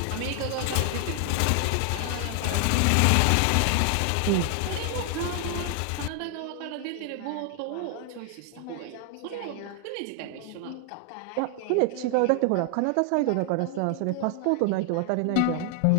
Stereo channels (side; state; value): both; different; correlation 0.00